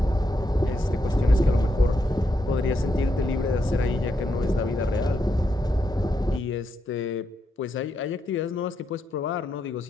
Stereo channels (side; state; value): both; normal; correlation 0.81